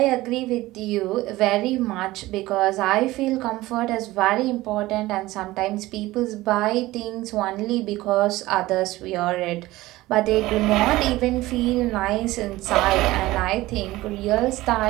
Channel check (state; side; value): quieter; left; 18.0 dB